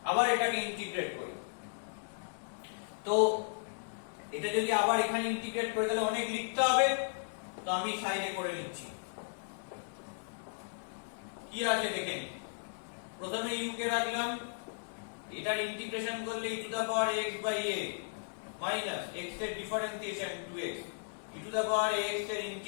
আবার এটাকে ইন্টিগ্রেট করি তো এটা যদি আবার এখানে ইন্টিগ্রেট করে তাহলে অনেক লিখতে হবে তো আমি সাইডে করে নিচ্ছি কি আছে দেখে নিই প্রথমে u কে রাখলাম এটার ইন্টিগ্রেশন করলে e to the power x by a minus x এর differentiation 2x e to the power x এর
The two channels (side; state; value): right; silent; digital silence